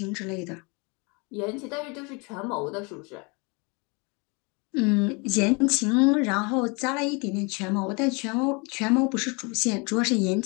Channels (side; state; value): right; quieter; 30.3 dB